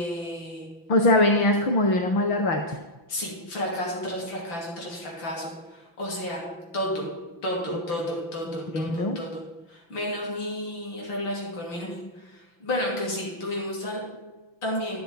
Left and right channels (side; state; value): right; late; 5.9 ms